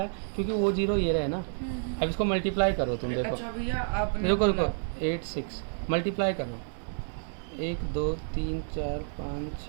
क्योंकि वो 0 ये रहे ना। अब इसको मल्टीप्लाई करो तुम, देखो अच्छा भैया आपने रुको बोला- 8 6 मल्टीप्लाई करो 1 2 3 4 5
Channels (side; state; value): left; silent; 58 dB below the other